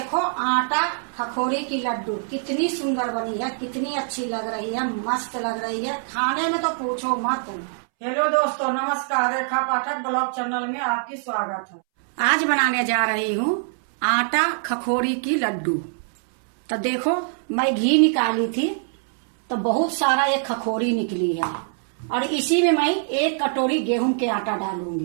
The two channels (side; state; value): left; silent; 63 dB below the other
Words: आटा खखोरी की लड्डू कितनी सुंदर बनी है, कितनी अच्छी लग रही है, मस्त लग रही है। खाने में तो पूछो मत। हेलो दोस्तों, नमस्कार। रेखा पाठक ब्लॉग चैनल में आपकी स्वागत है। आज बनाने जा रही हूँ आटा खखोरी की लड्डू। तो देखो मैं घी निकाली थी तो बहुत सारा ये खखोरी निकली है और इसी में मैं 1 कटोरी गेहूं के आटा